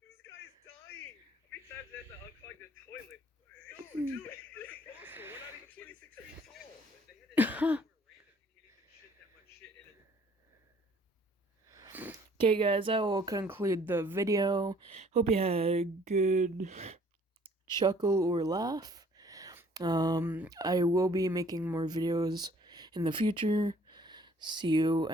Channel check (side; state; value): both; normal; correlation 0.58